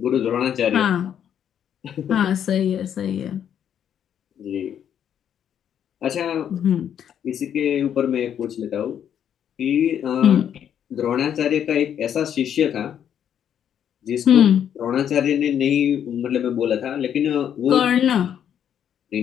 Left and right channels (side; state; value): right; quieter; 9.2 dB